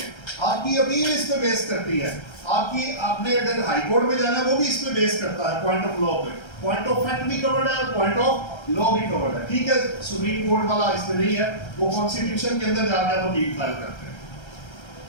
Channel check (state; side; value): late; right; 1.3 ms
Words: आपकी अपील इस पे बेस करती है, आपने अगर हाई कोर्ट में जाना है वो भी इस पे बेस करता है, पॉइंट ऑफ लॉ पे। पॉइंट ऑफ फैक्ट भी कवर्ड है और पॉइंट ऑफ लॉ भी कवर्ड है। ठीक है, सुप्रीम कोर्ट वाला इसमें नहीं है, वो कॉन्स्टिट्यूशन के अंदर जाकर वो डील फाइल करते हैं।